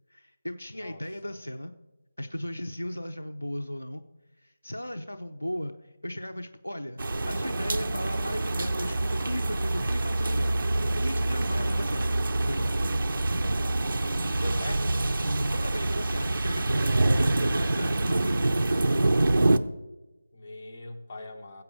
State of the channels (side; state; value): both; inverted; correlation -0.97